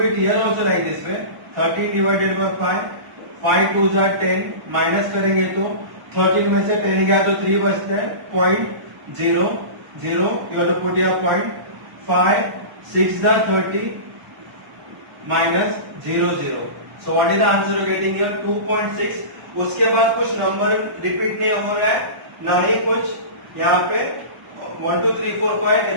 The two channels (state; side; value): late; left; 1.0 ms